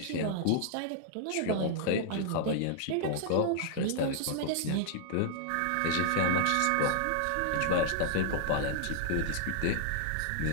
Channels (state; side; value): different; both; correlation -0.01